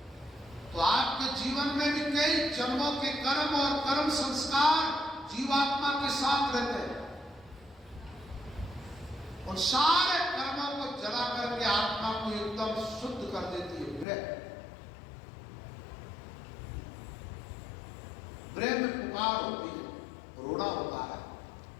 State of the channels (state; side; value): drops out; right; at 14.1 s